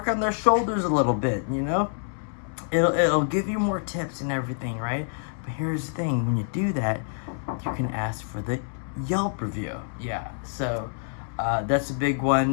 on their shoulders a little bit, It'll give you more tips and everything, right? But here's the thing, when you do that, you can ask for the Yelp review. Yeah, so that's a big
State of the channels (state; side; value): silent; right; 60 dB below the other